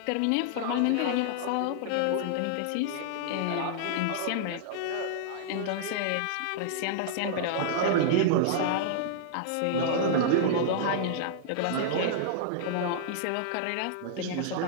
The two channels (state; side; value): different; both; correlation -0.01